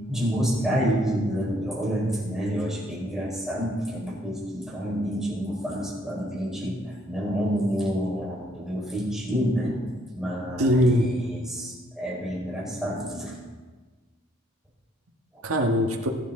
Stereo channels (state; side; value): normal; both; correlation 0.68